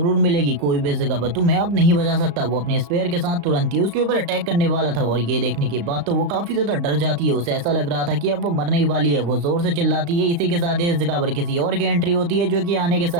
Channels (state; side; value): late; left; 35 ms